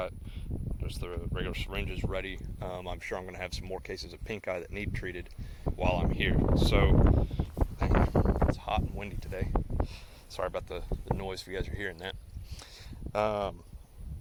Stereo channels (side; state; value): both; identical; correlation 1.00